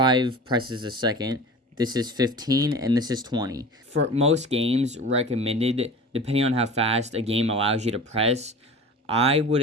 presses a second. This is 15, and this is 20. For most games recommended, depending on how fast a game allows you to press, I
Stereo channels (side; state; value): both; normal; correlation 0.36